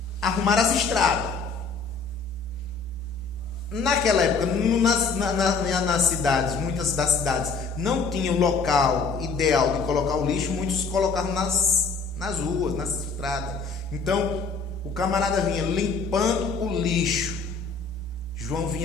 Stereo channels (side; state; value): right; quieter; 4.7 dB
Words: arrumar as estradas. Naquela época, nas cidades, muitas das cidades não tinham local ideal de colocar o lixo, muitos colocavam nas ruas, nas estradas. Então, o camarada vinha limpando o lixo. João